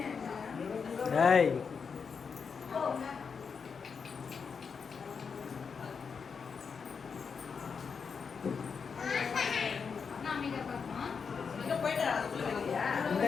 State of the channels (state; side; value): quieter; right; 5.8 dB